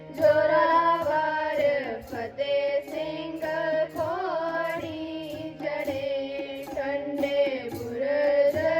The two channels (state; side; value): identical; both; correlation 1.00